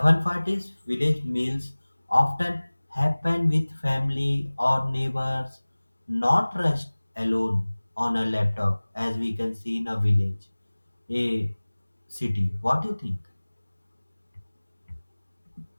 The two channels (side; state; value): both; inverted; correlation -1.00